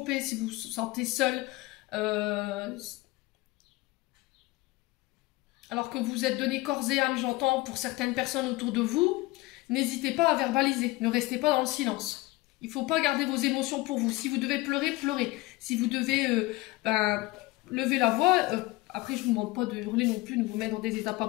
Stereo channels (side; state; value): right; quieter; 20.6 dB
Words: si vous vous sentez seul, alors que vous êtes donné corps et âme, j'entends, pour certaines personnes autour de vous, n'hésitez pas à verbaliser, ne restez pas dans le silence. Il ne faut pas garder vos émotions pour vous. Si vous devez pleurer, pleurez. Si vous devez lever la voix, après je ne vous demande pas de hurler non plus, de vous mettre dans des états pas